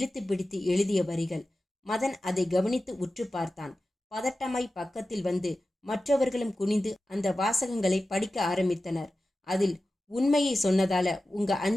பிடித்து எழுதிய வரிகள். மதன் அதை கவனித்து உற்று பார்த்தான். பதட்டமாய் பக்கத்தில் வந்து மற்றவர்களும் குனிந்து அந்த வாசகங்களை படிக்க ஆரம்பித்தனர். அதில், உண்மையை சொன்னதால உங்க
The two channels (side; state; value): both; normal; correlation 0.94